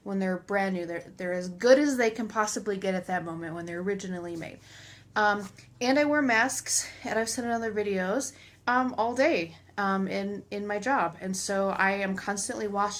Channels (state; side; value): identical; both; correlation 1.00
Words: when they're brand new. They're as good as they can possibly get at that moment when they're originally made. And I wear masks, and I've said in other videos, all day in my job. And so I am constantly